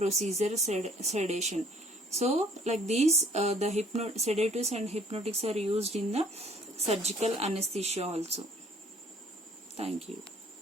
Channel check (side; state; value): both; normal; correlation 0.57